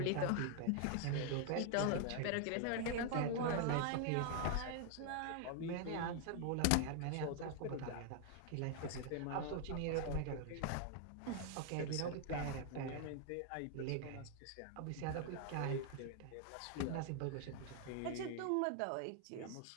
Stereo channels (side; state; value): both; different; correlation 0.00